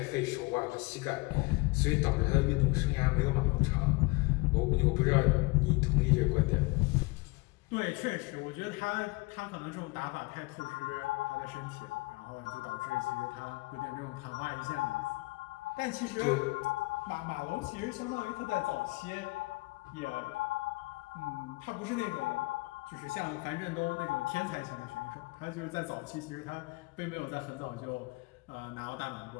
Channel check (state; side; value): quieter; right; 24.7 dB